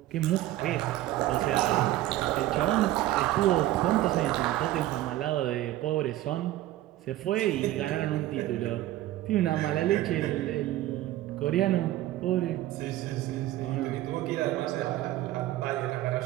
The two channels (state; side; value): quieter; left; 14.9 dB